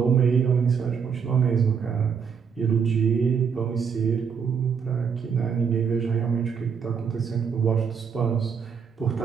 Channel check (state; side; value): quieter; left; 6.5 dB